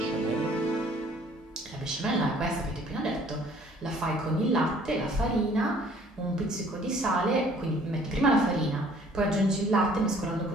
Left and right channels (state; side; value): normal; both; correlation 0.57